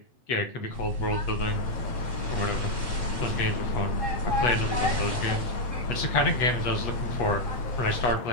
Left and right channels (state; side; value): late; right; 8.3 ms